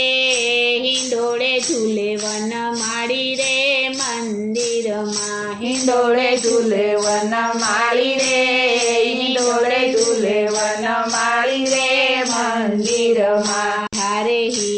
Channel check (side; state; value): both; identical; correlation 1.00